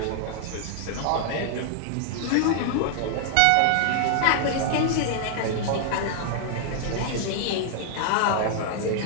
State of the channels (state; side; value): different; both; correlation 0.00